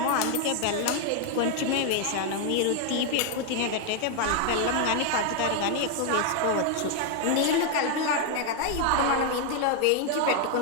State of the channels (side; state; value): both; different; correlation 0.00